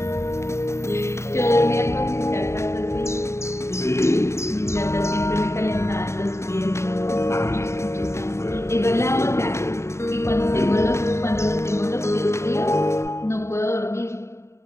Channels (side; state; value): right; late; 0.13 ms